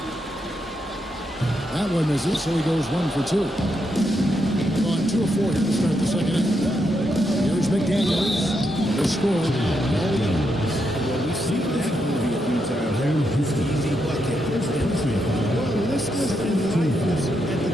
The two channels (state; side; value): normal; both; correlation 0.81